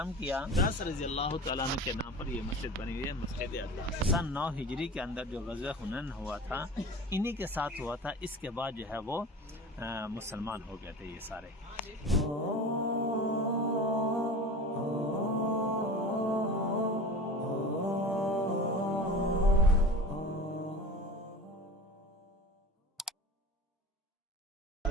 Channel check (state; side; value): normal; both; correlation 0.35